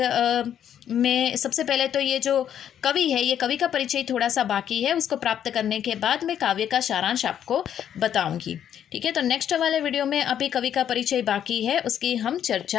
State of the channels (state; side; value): quieter; right; 9.7 dB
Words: में सबसे पहले तो ये जो कवि है, ये कवि का परिचय थोड़ा सा बाकी है, उसको प्राप्त करने के बाद मैं काव्य का सारांश आपको बताऊंगी, ठीक है। तो नेक्स्ट वाले वीडियो में अभी कवि का परिचय बाकी है, उसकी हम